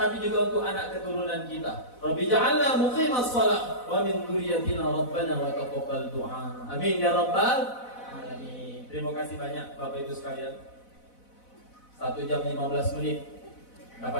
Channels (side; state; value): right; late; 4.0 ms